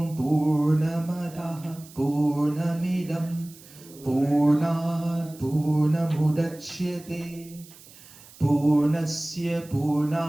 Purnamadaha Purnamidam Purnat Purnamudachyate Purnasya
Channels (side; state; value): right; noise; hiss, 21 dB below the sound